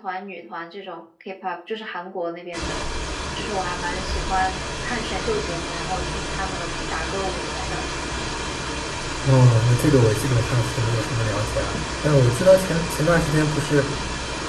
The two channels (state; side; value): identical; both; correlation 1.00